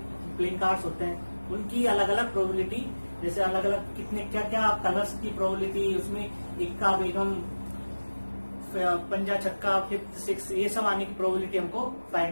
प्लेइंग कार्ड्स होते हैं, उनकी अलग अलग प्रोबेबिलिटी, जैसे अलग अलग कितने क्या क्या कलर्स की प्रोबेबिलिटी, उसमें इक्का, बेगम, पंजा, छक्का, फिफ्थ, सिक्स, ये सब आने की प्रोबेबिलिटी हमको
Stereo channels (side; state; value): both; inverted; correlation -1.00